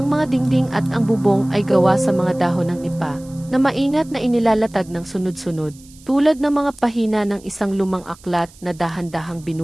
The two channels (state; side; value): noise; right; hiss, 24 dB below the sound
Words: mga dingding at ang bubong ay gawa sa mga dahon ng nipa, na maingat na inilalatag ng sunod-sunod, tulad ng mga pahina ng isang lumang aklat na dahan-dahang